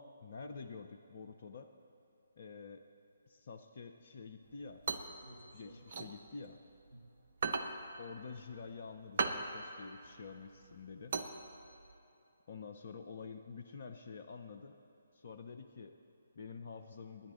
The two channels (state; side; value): inverted; both; correlation -0.74